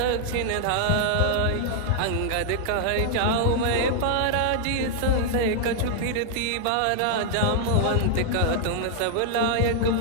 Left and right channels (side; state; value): both; different; correlation 0.00